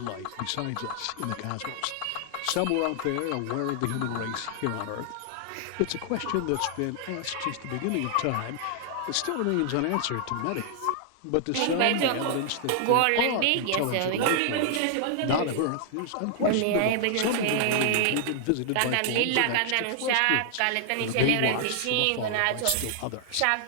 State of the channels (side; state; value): both; different; correlation 0.00